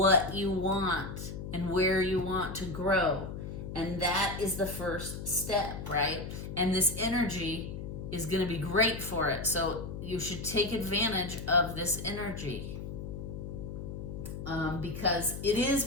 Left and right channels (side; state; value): left; noise; hum, 8 dB below the sound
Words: you want and where you want to grow. And that is the first step, right? And this energy is going to be great for it. So you should take advantage of this energy. Because it is